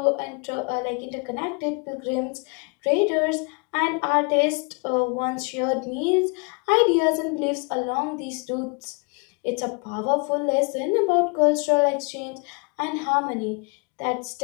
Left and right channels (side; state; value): right; quieter; 33.3 dB